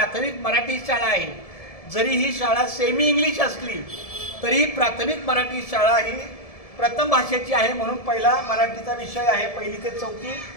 मराठी शाळा आहे। जरी ही शाळा सेमी इंग्लिश असली तरी प्राथमिक मराठी शाळा ही प्रथम भाषेची आहे, म्हणून पहिला मराठीचा विषय आहे 1ली ते 4थी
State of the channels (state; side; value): late; right; 1.7 ms